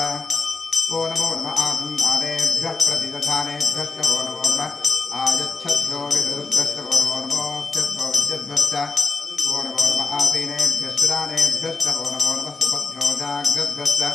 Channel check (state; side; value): quieter; right; 4.0 dB